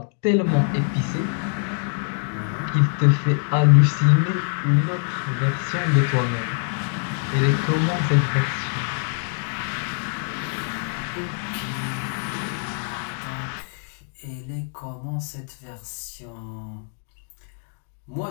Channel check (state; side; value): silent; right; 57 dB below the other